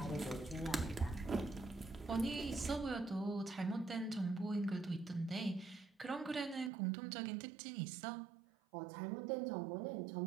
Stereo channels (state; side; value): drops out; left; at 6.7 s